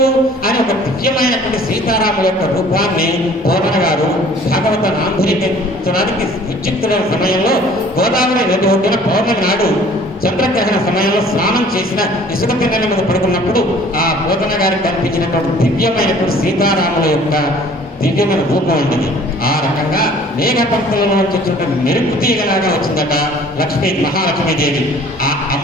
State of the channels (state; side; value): normal; both; correlation 0.52